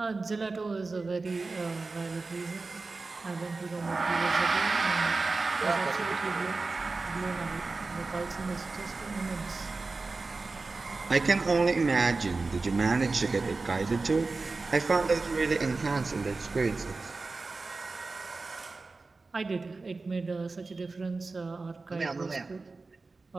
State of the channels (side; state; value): left; quieter; 3.8 dB